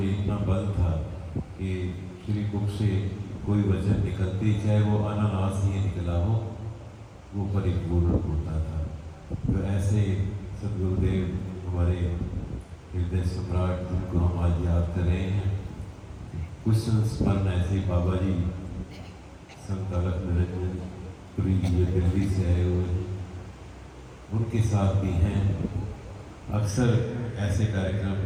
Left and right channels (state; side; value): identical; both; correlation 1.00